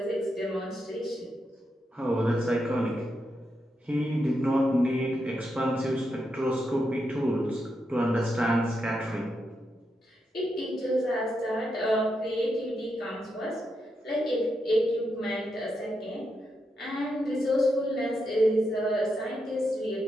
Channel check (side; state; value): both; normal; correlation 0.84